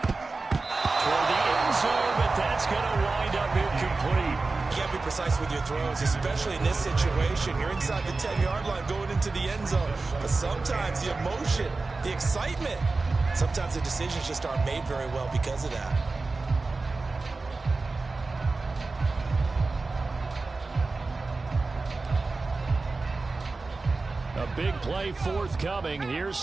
Toward the end zone, but that's going to wind up incomplete. You got to be precise with your throws, especially in this situation. You're inside the 10-yard line going into the end zone. But sometimes the emotion, the excitement, sometimes the decisions just aren't made very well because of that. A big play forthcoming. Here's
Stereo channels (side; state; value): left; quieter; 3.7 dB